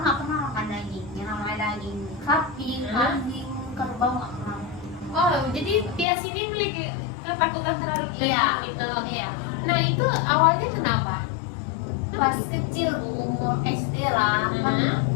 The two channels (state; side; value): drops out; right; at 6.1 s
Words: nggak pernah makan daging yang namanya daging sapi, kambing, kerbau nggak pernah. Oh, jadi Tias ini memiliki ketakutan terhadap daging Iya. gitu. Oke. Iya. Nah, itu awalnya kenapa? Pas kecil Bu, umur SD lah, kan